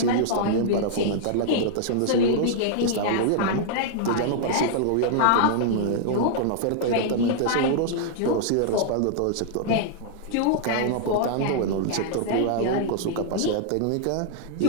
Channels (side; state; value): both; different; correlation -0.01